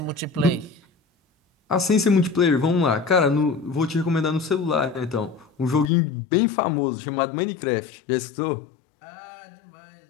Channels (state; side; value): drops out; right; at 5.9 s